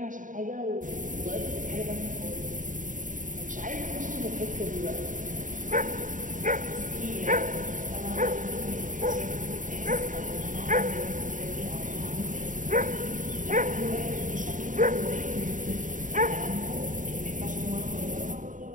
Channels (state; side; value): late; left; 0.38 ms